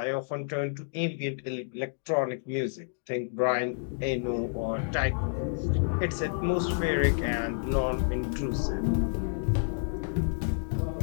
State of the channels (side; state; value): right; silent; digital silence